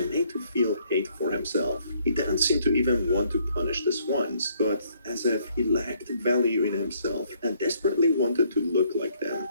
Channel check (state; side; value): inverted; both; correlation -0.67